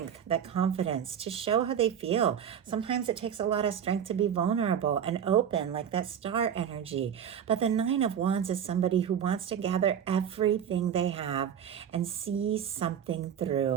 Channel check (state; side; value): quieter; left; 8.7 dB